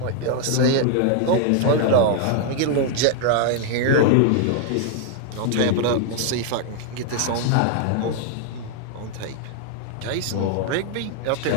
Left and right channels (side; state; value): both; different; correlation 0.00